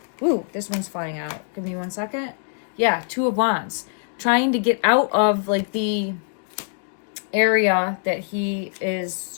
Ooh, this one's flying out. Give me 1 second. Yeah, 2 of Wands. Trying to get out of like the area that he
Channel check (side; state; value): right; silent; digital silence